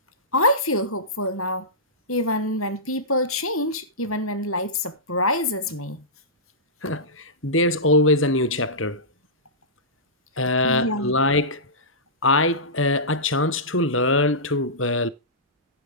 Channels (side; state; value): both; normal; correlation -0.17